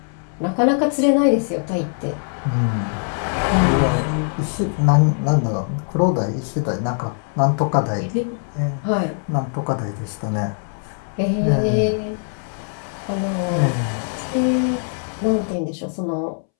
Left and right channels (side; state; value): right; silent; 65 dB below the other